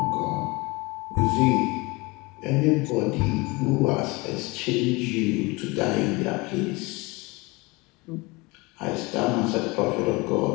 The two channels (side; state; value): right; quieter; 24.6 dB